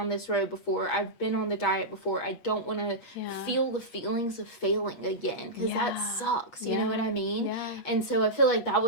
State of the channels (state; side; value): late; right; 8.4 ms